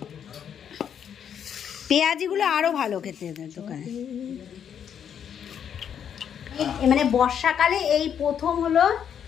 পেঁয়াজিগুলো আরো ভালো খেতে দোকানে। মানে বর্ষাকালে এই প্রথম হলো,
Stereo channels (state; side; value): quieter; right; 8.4 dB